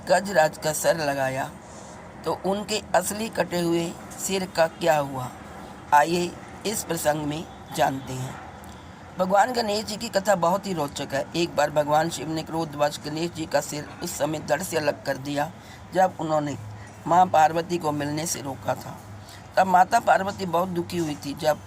गजराज का सर लगाया तो उनके असली कटे हुए सिर का क्या हुआ, आइए इस प्रसंग में जानते हैं। भगवान गणेश जी की कथा बहुत ही रोचक है। एक बार भगवान शिव ने क्रोधवश गणेश जी का सिर उस समय धड़ से अलग कर दिया जब उन्होंने माँ पार्वती को मिलने से रोका था। तब माता पार्वती बहुत दुखी हुई थी जब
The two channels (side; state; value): both; identical; correlation 1.00